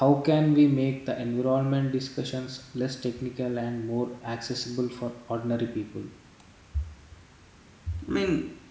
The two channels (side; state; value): both; identical; correlation 1.00